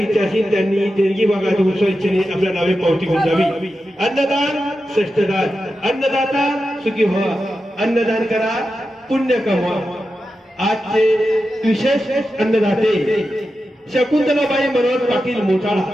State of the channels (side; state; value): both; normal; correlation 0.90